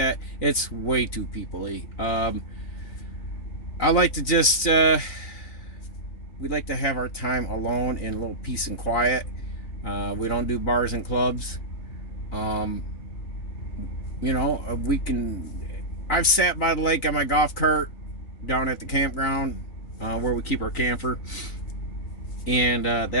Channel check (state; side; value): late; right; 3.9 ms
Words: it's way too people-y. I like to just we like to have our time alone in a little peace and quiet. We don't do bars and clubs. You know, I've sat by the lake on my golf cart down at the campground where we keep our camper, and